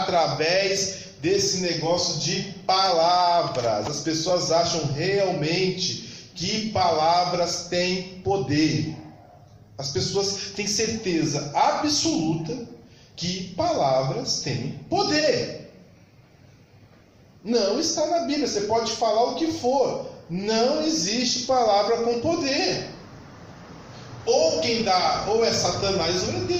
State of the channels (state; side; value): identical; both; correlation 1.00